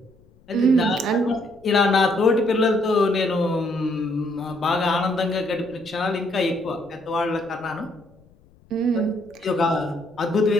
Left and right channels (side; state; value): left; noise; rumble, 29 dB below the sound